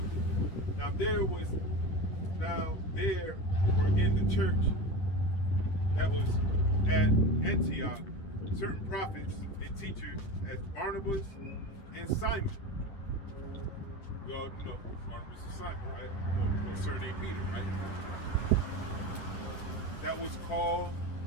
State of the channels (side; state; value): right; late; 10 ms